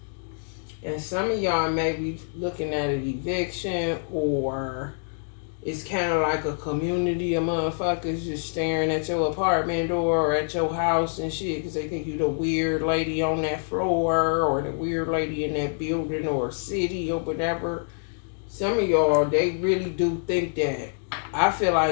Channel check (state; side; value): silent; right; digital silence